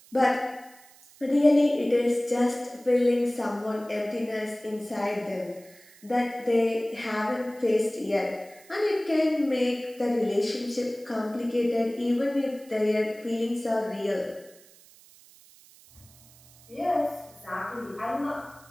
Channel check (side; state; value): right; noise; hiss, 25 dB below the sound